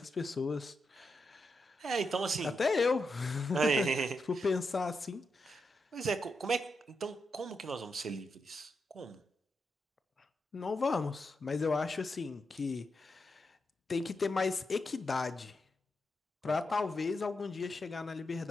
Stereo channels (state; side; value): normal; both; correlation 0.85